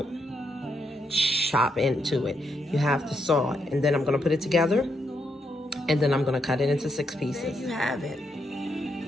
chop into it. You have to saw it. And then I'm gonna put it together, and then I'm gonna cut it into 6 pieces. There you have it.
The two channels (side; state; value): both; normal; correlation 0.79